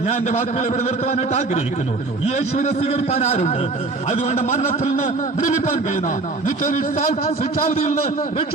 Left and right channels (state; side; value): quieter; left; 3.5 dB